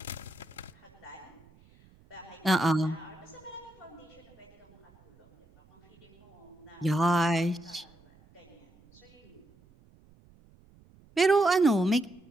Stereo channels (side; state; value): right; noise; rumble, 28 dB below the sound